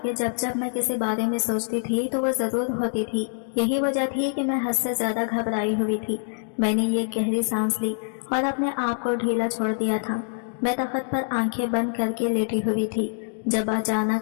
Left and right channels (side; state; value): right; silent; digital silence